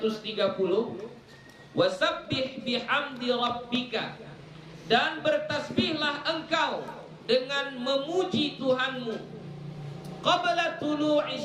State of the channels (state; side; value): identical; both; correlation 1.00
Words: Wasabbih bihamdi rabbika, dan bertasbihlah engkau dengan memuji Tuhanmu qabla tulu'i